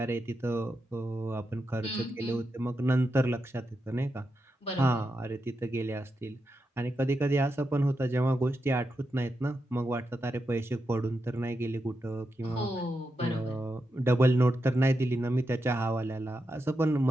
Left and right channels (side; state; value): both; normal; correlation 0.87